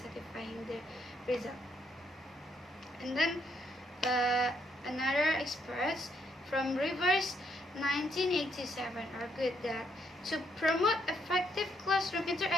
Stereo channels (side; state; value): both; normal; correlation 0.74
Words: the result. And then another experts from Rivers 1987 argued that to promote effective classroom